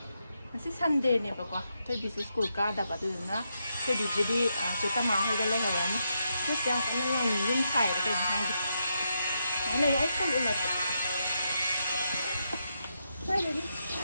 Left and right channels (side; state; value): both; inverted; correlation -0.83